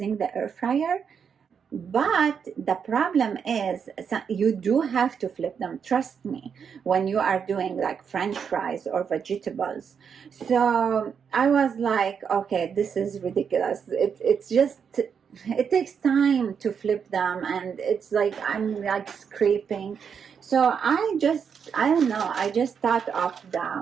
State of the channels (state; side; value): quieter; left; 6.9 dB